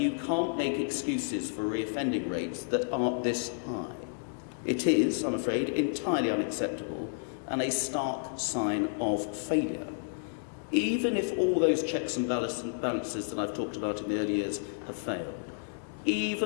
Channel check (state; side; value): silent; right; digital silence